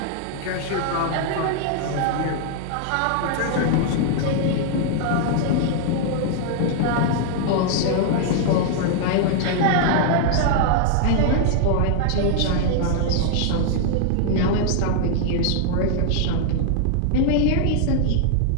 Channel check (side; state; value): both; different; correlation -0.01